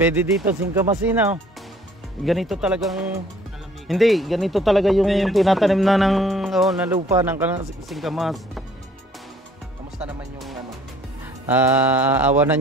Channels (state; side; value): normal; both; correlation 0.57